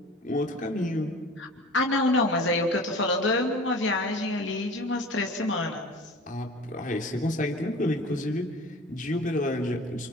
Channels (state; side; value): normal; both; correlation 0.41